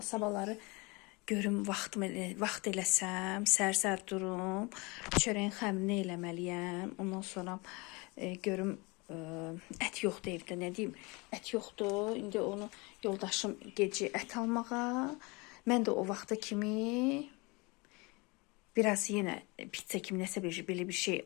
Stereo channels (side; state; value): right; quieter; 26.9 dB